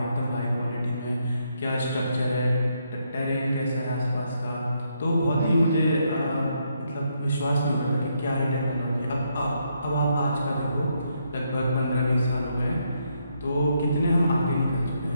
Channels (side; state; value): both; inverted; correlation -0.77